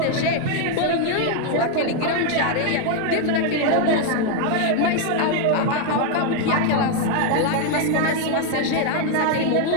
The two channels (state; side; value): different; both; correlation 0.01